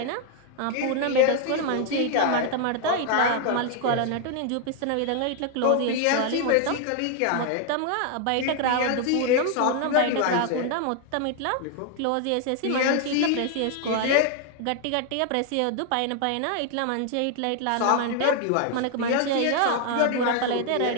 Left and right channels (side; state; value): both; different; correlation 0.00